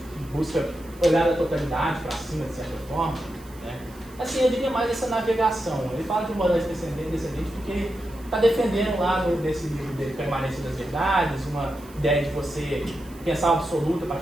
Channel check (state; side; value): noise; right; hiss, 24 dB below the sound